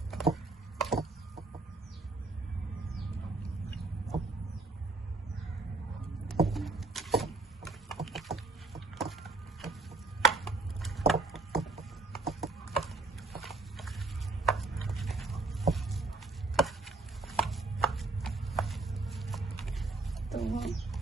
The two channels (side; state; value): left; quieter; 3.3 dB